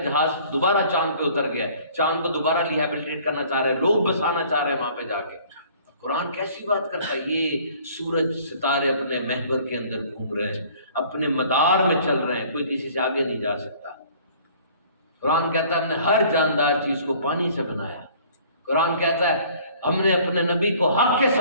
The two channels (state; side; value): inverted; both; correlation -0.53